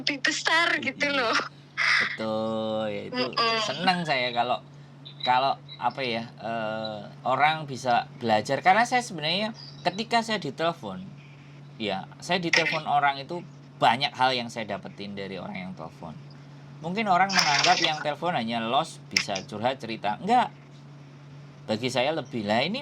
besar gitu loh. Betul, ya itu senang saya kalau apa ya orang bisa belajar, karena saya sebenarnya ketika saya ditelepon, ya saya ditelepon orang itu banyak hal yang saya dapetin dari orang yang telepon. Mungkin orang menganggap yang telepon hanya los bisa curhat cerita, enggak. Bagi saya lebih lah ini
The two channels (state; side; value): identical; both; correlation 1.00